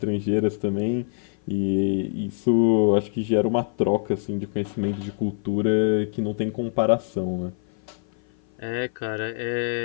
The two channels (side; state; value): right; silent; 55 dB below the other